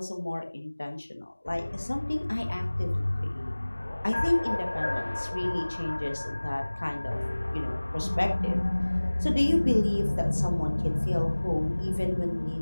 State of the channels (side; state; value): both; inverted; correlation -1.00